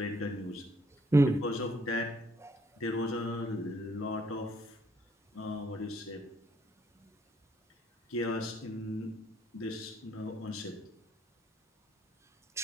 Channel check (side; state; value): both; normal; correlation 0.67